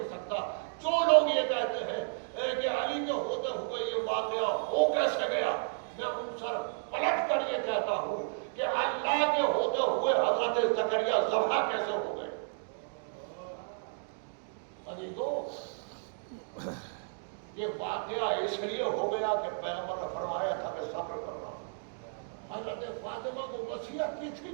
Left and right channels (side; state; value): left; silent; digital silence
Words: سکتا۔ جو لوگ یہ کہتے ہیں کہ علی کے ہوتے ہوئے یہ واقعہ ہو کیسے گیا، میں ان سر پلٹ کر یہ کہتا ہوں کہ اللہ کے ہوتے ہوئے حضرت زکریا ذبح کیسے ہو گئے۔ یہ واقعہ اس لیے ہو گیا کہ پیغمبر نے فرمایا تھا کہ صبر کرنا۔ حضرت فاطمہ کو وصیت کی تھی